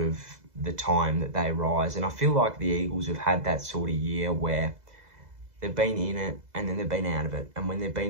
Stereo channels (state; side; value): late; left; 2.0 ms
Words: of the time that they rise, and I feel like the Eagles have had that sort of year where they've been in it and then they've been out of it, and when they've